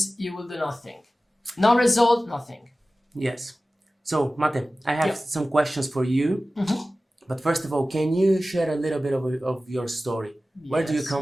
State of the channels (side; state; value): both; normal; correlation 0.96